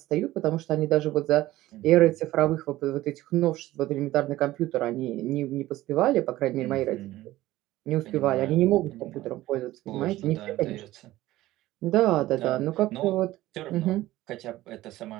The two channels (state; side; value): quieter; left; 16.3 dB